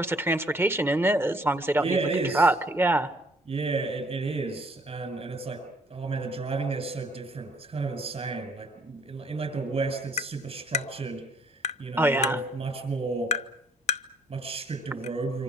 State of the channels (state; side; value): normal; both; correlation 0.63